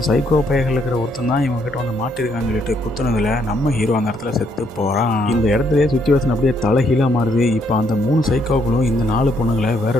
சைக்கோ பையர்கள் இருக்கிற ஒருத்தன் தான் இவங்க கிட்ட வந்து மாட்டிருக்கான்னு சொல்லிட்டு குத்துனதுல நம்ம ஹீரோ அந்த இடத்துல செத்து போறான். இந்த இடத்துல சுச்சுவேஷன் அப்படியே தலைகீழா மாறுது. இப்ப அந்த 3 சைக்கோக்களும் இந்த 4 பொண்ணுங்களை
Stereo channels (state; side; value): normal; both; correlation 0.72